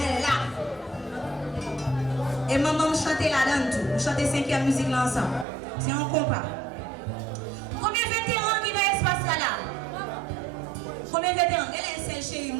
là. Et maman me chanter là-dedans tout. On chante 5e musique là ensemble. C'est un compas. Combien de vétérans qui dans l'espace là? Combien de vétérans? Quel est celle chérie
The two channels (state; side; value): drops out; left; at 5.5 s